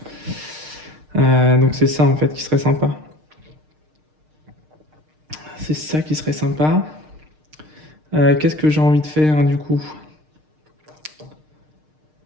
Donc c'est ça en fait qui serait sympa. C'est ça qui serait sympa. Qu'est-ce que j'ai envie de faire hein, du coup?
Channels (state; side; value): late; left; 6.5 ms